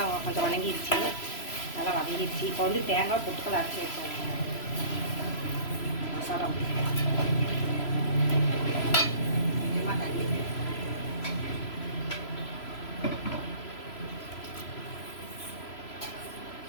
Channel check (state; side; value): late; right; 3.0 ms